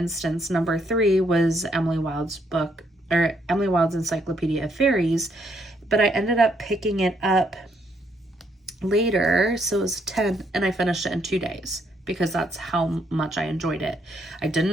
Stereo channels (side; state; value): both; normal; correlation 0.72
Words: number 3 was Emily Wild's book, or Emily Wild's Encyclopedia of Fairies, but I ended up picking it up later, so it was 10, and I finished it in 2 days because that's how much I enjoyed it. I